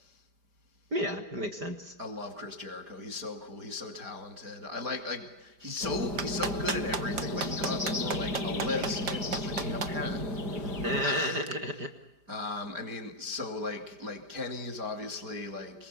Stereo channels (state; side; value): late; left; 5.0 ms